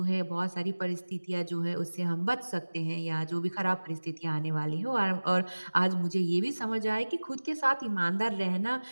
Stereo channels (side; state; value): both; inverted; correlation -1.00